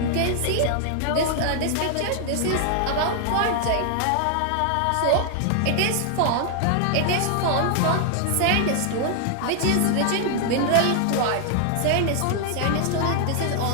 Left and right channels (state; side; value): different; both; correlation 0.00